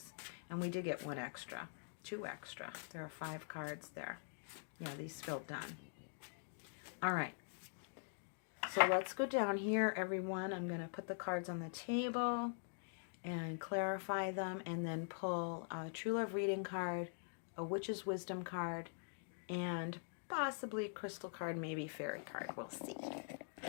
And we did get 1 extra. 2 extra. There are 5 cards there. Yeah, these feel done. All right. So let's go down here, everyone. I'm going to put the cards on the table and clarify them, and then pull a True Love reading card, a Witch's Wisdom card, and possibly a crystal card, maybe fairy card. We'll see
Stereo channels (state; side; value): silent; right; digital silence